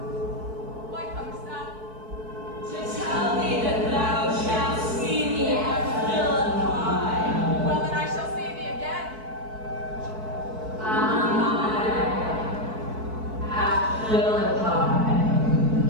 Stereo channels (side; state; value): left; late; 4.6 ms